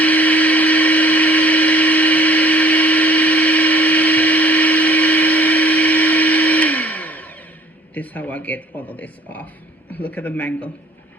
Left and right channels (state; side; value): normal; both; correlation 0.54